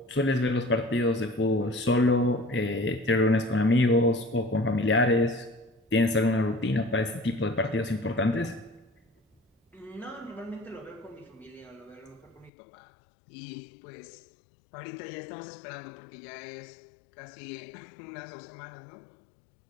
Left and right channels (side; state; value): right; drops out; at 12.5 s